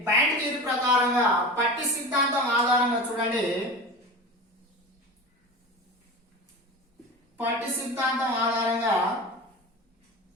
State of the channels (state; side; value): normal; both; correlation 0.30